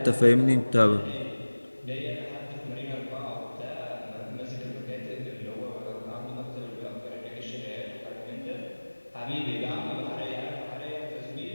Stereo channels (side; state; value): both; inverted; correlation -1.00